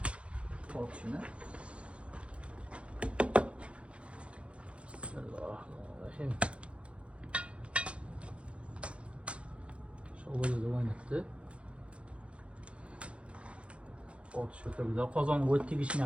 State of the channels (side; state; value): left; late; 0.060 ms